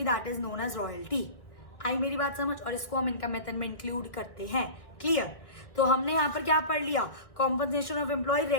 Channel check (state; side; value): late; right; 1.5 ms